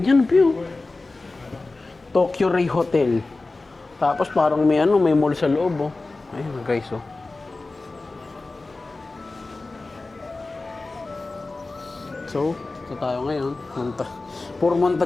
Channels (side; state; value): right; quieter; 3.4 dB